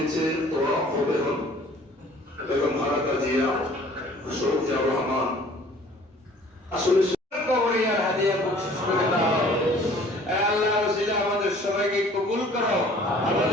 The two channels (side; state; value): both; normal; correlation 0.52